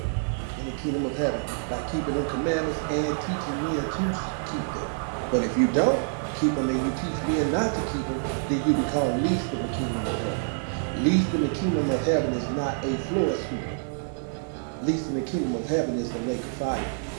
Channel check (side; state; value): left; silent; digital silence